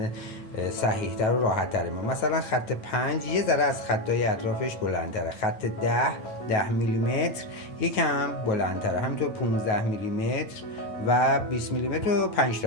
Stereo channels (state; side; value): late; right; 9.4 ms